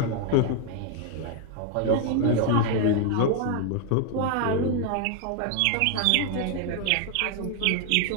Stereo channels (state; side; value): different; both; correlation 0.01